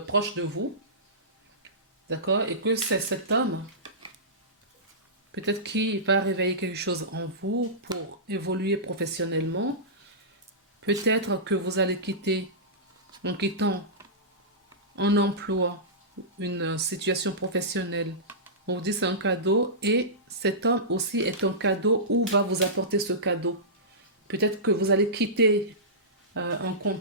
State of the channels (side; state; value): both; normal; correlation -0.18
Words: vous, d'accord? Et que c'est cet homme, peut-être qui va réveiller quelque chose en vous pour évoluer professionnellement. Peut-être que vous allez quitter, en quittant un emploi, une situation professionnelle. On vous dit c'est un cadeau et cet homme aussi est un cadeau ou va vous apporter ce cadeau. Peut-être que vous allez quitter un